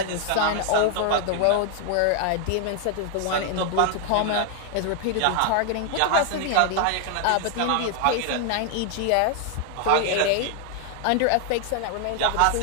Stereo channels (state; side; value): different; both; correlation 0.00